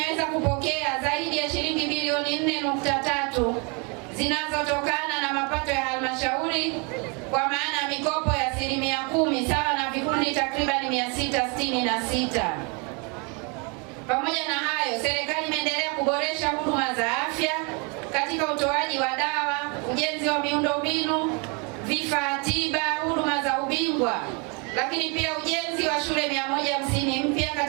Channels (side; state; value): left; quieter; 32.6 dB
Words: kupokea zaidi ya shilingi bilioni 4.3 zinazotokana na mapato ya halmashauri, kwa maana ya mikopo ya 10% sawa na vikundi takribani 666. Pamoja na hayo, serikali imeendelea kuboresha huduma za afya katika utoaji wa dawa, ujenzi wa miundombinu, vifaa tiba, huduma za ubingwa, lakini pia ujenzi wa shule 150 mpya